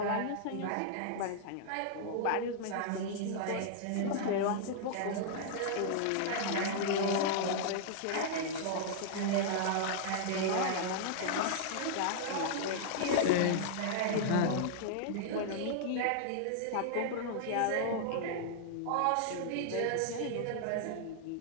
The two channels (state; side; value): different; both; correlation -0.01